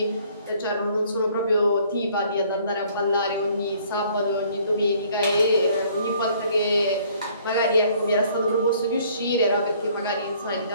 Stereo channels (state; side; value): inverted; both; correlation -0.60